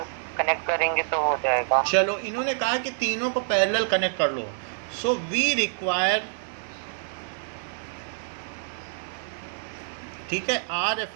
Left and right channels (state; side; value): silent; left; digital silence